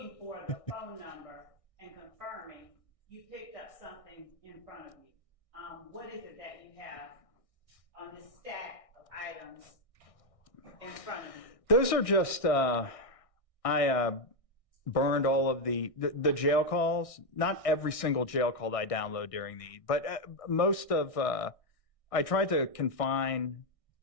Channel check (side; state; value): right; late; 1.6 ms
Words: for the phone number and confirming you picked up something in front of you. What is it that you have on this stack of items in front of you? Those are just, I burned all of the jail calls. Not every single jail call that I download during but most of, I tried to confine